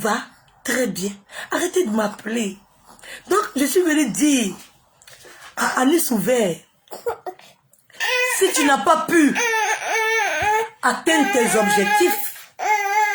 très bien. Arrêtez de m'appeler. Donc, je suis venue dire à Anis Ouvert, si tu n'as pas pu atteindre tes objectifs,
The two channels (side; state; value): both; identical; correlation 1.00